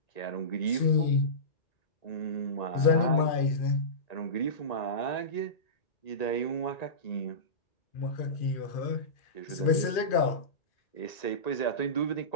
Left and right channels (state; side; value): late; right; 2.4 ms